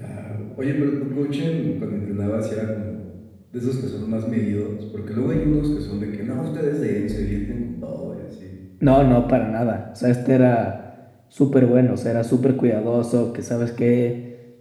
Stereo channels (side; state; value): both; identical; correlation 1.00